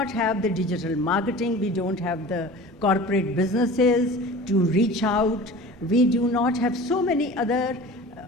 have the digital marketing, we don't have the corporate businesses to reach out, we do not have so many other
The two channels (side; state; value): both; normal; correlation 0.39